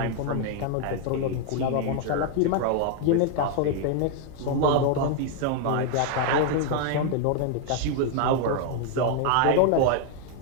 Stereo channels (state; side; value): different; both; correlation 0.00